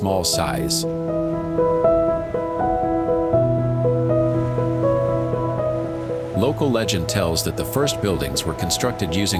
size. Local legend tells that the first buildings were constructed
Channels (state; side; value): identical; both; correlation 1.00